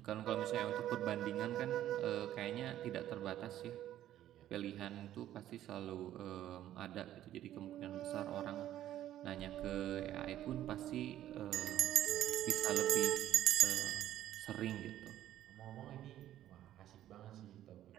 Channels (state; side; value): quieter; left; 12.5 dB